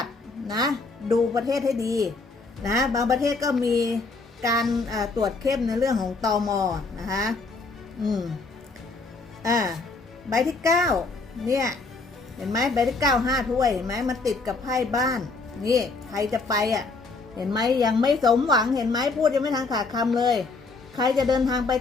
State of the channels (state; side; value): quieter; right; 3.8 dB